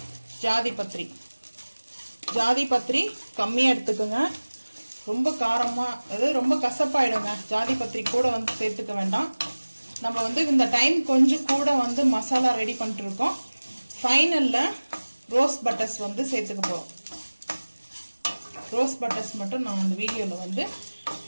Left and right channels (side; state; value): both; inverted; correlation -1.00